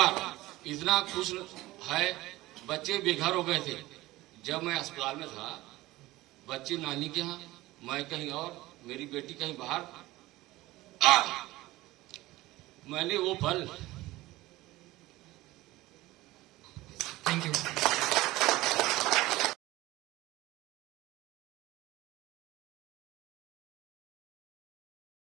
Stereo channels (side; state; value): left; quieter; 18.2 dB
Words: इतना खुश है। बच्चे बेघर हो गए थे जब मैं अस्पताल में था। बच्चे नानी के यहाँ, मैं कहीं और, मेरी बेटी कहीं बाहर। मैंने वो पल थैंक यू।